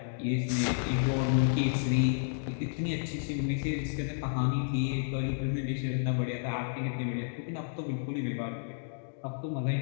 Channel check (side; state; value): right; silent; digital silence